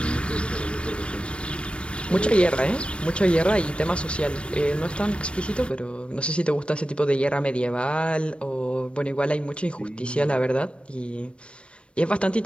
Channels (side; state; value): right; late; 0.059 ms